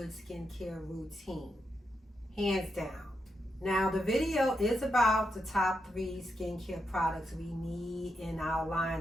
skincare routine, hands down. Now the video is about the top 3 skincare products we need in our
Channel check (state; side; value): normal; both; correlation 0.84